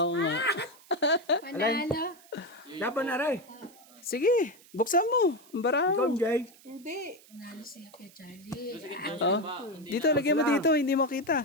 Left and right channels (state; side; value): noise; right; hiss, 25 dB below the sound